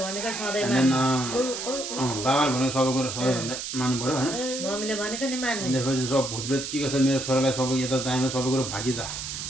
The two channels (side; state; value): right; noise; hiss, 6 dB below the sound